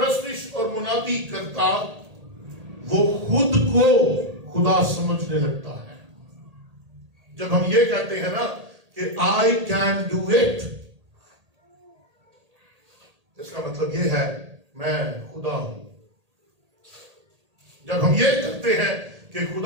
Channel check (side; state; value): left; late; 1.8 ms